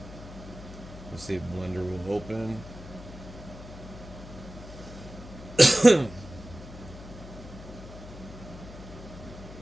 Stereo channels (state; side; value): noise; left; hum, 14 dB below the sound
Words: Let's see if Blender will open.